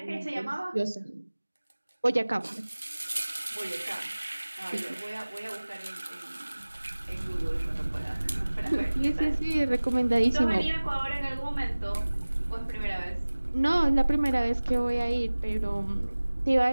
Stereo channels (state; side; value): inverted; both; correlation -1.00